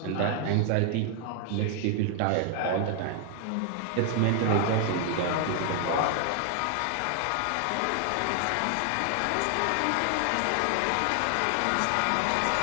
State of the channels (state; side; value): different; both; correlation 0.00